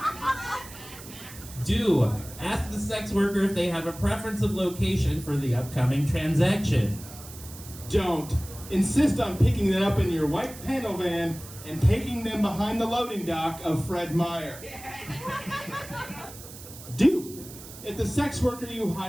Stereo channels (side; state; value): right; noise; hiss, 16 dB below the sound